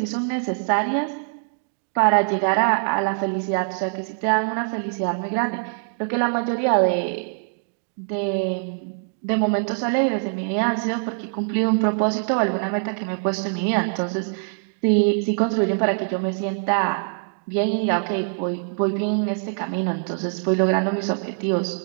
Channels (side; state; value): left; silent; 61 dB below the other